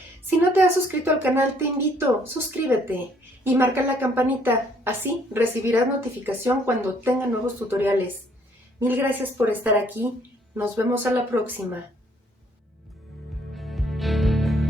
Si no te has suscrito al canal, te invito, suscríbete y marca la campanita. Así recibirás notificación cuando tenga nuevos tutoriales. Mil gracias por estar aquí. Nos vemos a la próxima.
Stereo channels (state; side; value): normal; both; correlation 0.64